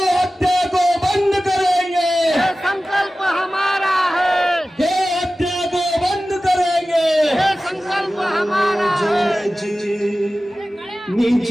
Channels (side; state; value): both; normal; correlation 0.96